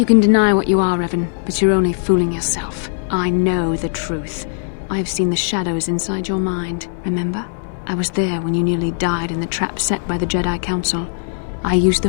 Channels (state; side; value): silent; right; digital silence